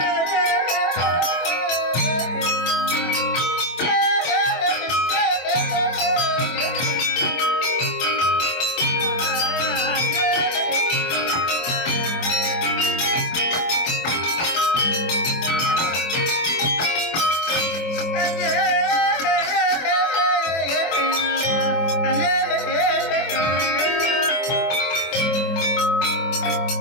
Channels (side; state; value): right; late; 24 ms